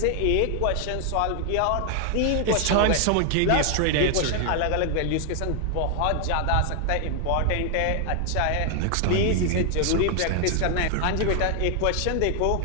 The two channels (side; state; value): both; different; correlation 0.00